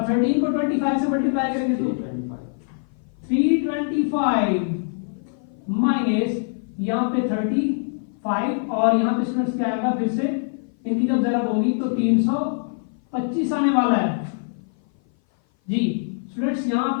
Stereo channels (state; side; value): silent; right; 57 dB below the other